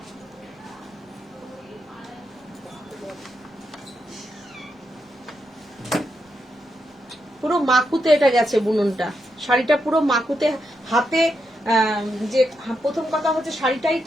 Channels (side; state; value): both; normal; correlation 0.83